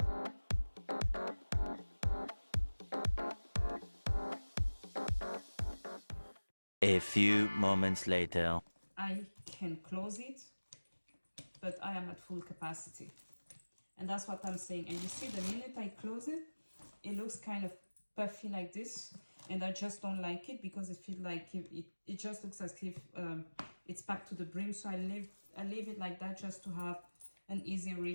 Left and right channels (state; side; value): inverted; both; correlation -1.00